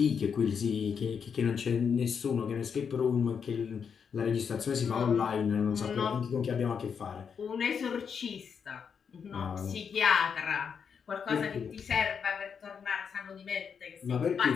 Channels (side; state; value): right; quieter; 6.7 dB